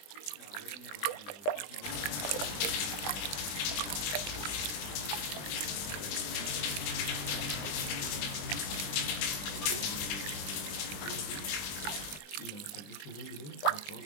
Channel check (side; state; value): right; late; 20 ms